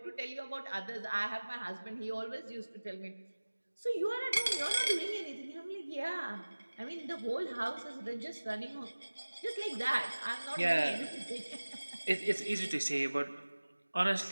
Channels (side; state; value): both; inverted; correlation -1.00